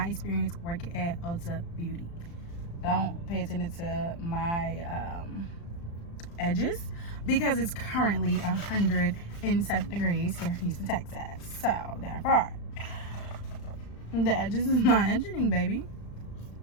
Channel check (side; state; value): right; late; 35 ms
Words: experience working at Ulta Beauty. Don't pay attention to my edges because it's currently 107 degrees here in Houston, Texas. So therefore, the edges is not edging, baby.